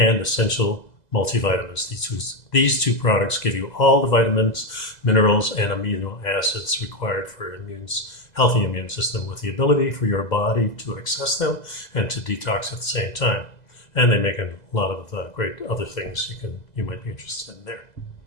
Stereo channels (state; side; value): late; right; 2.0 ms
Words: essential multivitamins. These two products give you all the vitamins, minerals, and amino acids required for healthy immune system, with the ability for your body to access them and to detox at the same time. And they make a lot of great other things you might be interested in there.